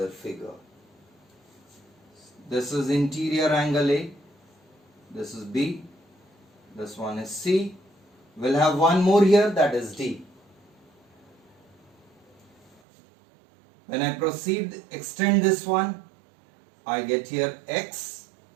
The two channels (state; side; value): drops out; left; at 12.8 s